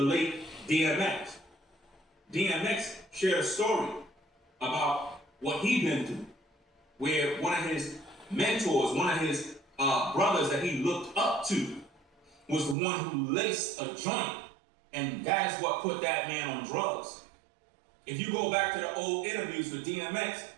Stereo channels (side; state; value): left; drops out; at 12.8 s